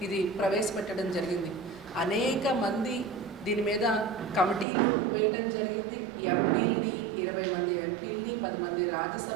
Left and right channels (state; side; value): drops out; left; at 4.7 s